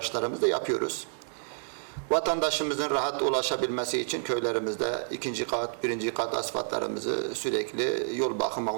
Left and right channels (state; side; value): silent; left; digital silence